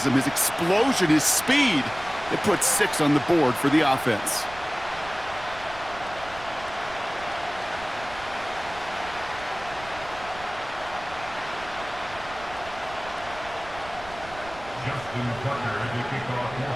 his explosion, his speed, it puts 6 on the board for the offense. Justin Tucker to kick off for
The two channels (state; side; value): noise; right; rumble, 17 dB below the sound